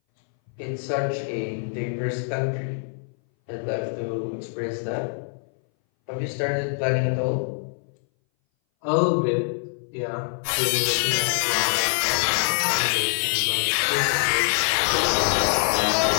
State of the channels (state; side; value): silent; right; 60 dB below the other